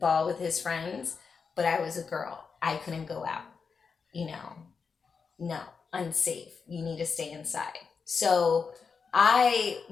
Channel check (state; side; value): quieter; right; 5.5 dB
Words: with his friends, but I was a girl. I couldn't go out. You know, no, unsafe. You need to stay inside. So I